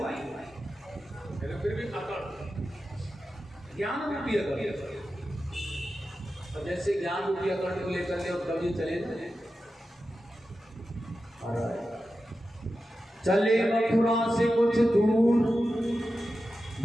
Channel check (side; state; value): both; normal; correlation 0.92